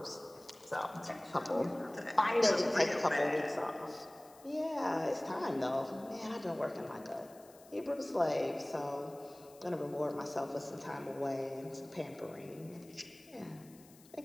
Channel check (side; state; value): left; noise; hiss, 24 dB below the sound